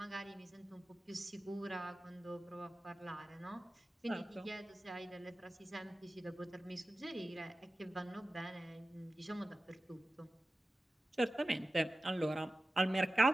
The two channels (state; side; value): normal; both; correlation 0.95